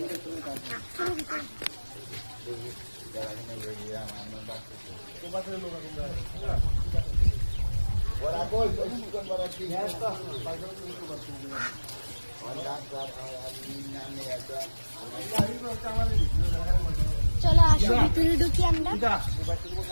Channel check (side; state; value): both; inverted; correlation -1.00